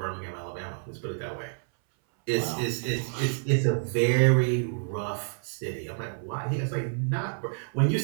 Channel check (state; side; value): silent; left; 59 dB below the other